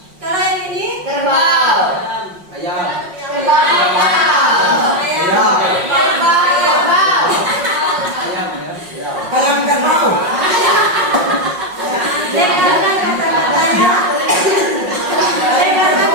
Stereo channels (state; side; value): late; left; 5.5 ms